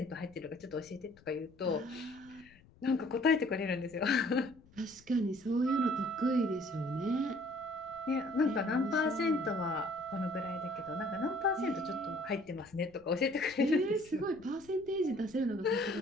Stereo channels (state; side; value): noise; left; rumble, 26 dB below the sound